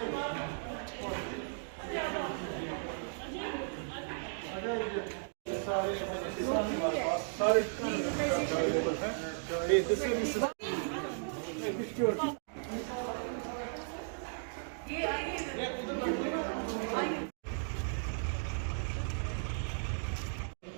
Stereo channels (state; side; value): silent; left; digital silence